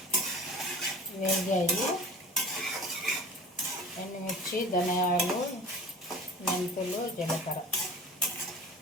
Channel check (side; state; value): both; normal; correlation 0.40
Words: వేగాయి. ఎండుమిర్చి, ధనియాలు, మెంతులు, జీలకర్ర